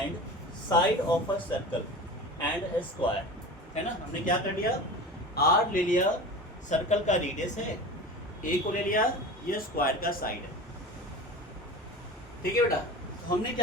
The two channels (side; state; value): both; normal; correlation 0.33